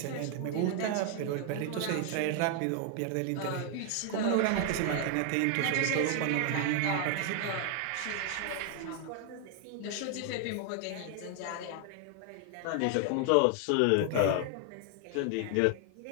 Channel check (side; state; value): both; different; correlation 0.00